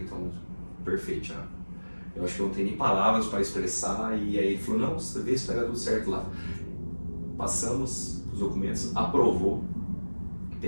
então, perfeito, Thiago. Eu acho que eu não tenho nem palavras para expressar, e aí ele falou, não, você vê se vai dar tudo certo lá. Passamos os documentos, aprovou,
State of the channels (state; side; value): inverted; both; correlation -1.00